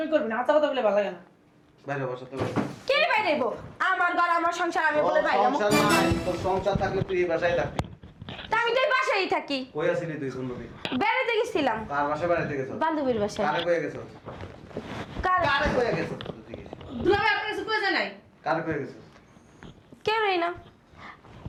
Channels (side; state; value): both; identical; correlation 1.00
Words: করবি না, হাতা কথা বলে ভালো লাগে না। বাইরে বাসা থেকে। কে বাইরে আইবো? আমার ঘর আমার সংসার, আমি বলে বাইরে যাবো। সংসার নাই, তোর সংসার থাকলে তুই এই বাসায় থাকবি। তা আমি তো এই বাসায় থাকি। কই আছিলি তুই 15 দিন? বেড়াতে গেছিলাম কার বাসায় বেড়াইতে গেছস? বান্ধবীর বাসায়। কারে কয়ে গেছস? কারে কয়ে গেছস তুই? দুলা ভাই আপনার কিছু কইছে নাই? কারে কয়ে গেছস? কেউ নেই না,